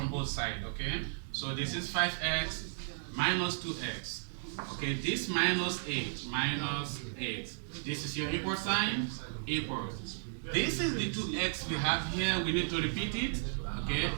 both sides, okay? So this is 5x minus 2x. Okay, this minus 8, minus 8. This is your equal sign, equals. This is the 2x we have here, we need to repeat it, okay?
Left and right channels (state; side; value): silent; left; digital silence